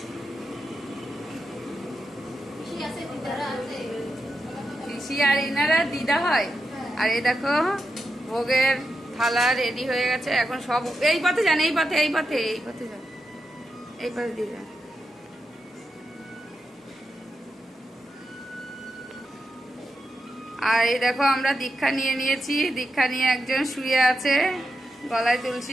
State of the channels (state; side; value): normal; both; correlation 0.87